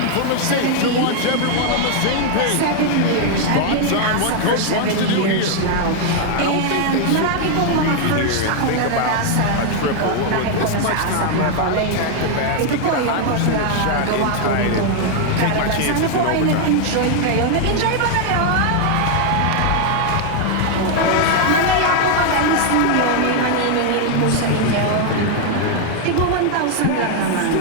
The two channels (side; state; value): both; different; correlation 0.00